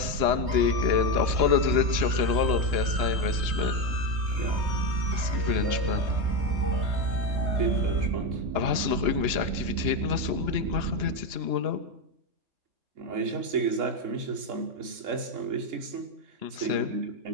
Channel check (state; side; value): late; left; 2.9 ms